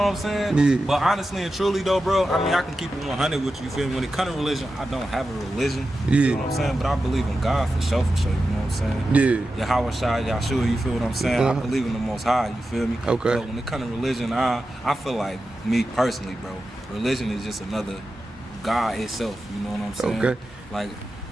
I'm saying? Yeah. But honestly and truly though, bro, I mean, I can keep it 100 with you, you feel me? When it comes to religion, I don't have a religion, you feel what I'm saying? But I believe in God for sure, you know what I'm saying? Yeah. Yahweh Shai, Yahshua, you feel what I'm saying? I Uh-huh. believe in the Most High, you feel me? Okay. But when it comes to religion, I feel like, me personally, bro, religion is just another God itself, you know what I'm saying? Okay. Like,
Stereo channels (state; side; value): normal; both; correlation 0.92